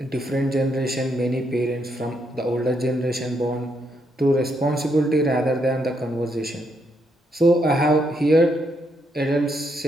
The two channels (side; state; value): both; normal; correlation 0.77